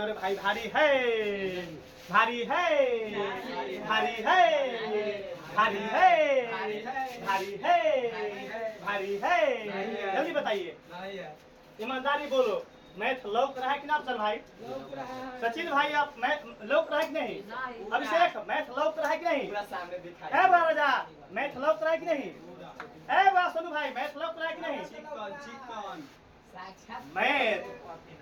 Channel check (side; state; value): both; identical; correlation 1.00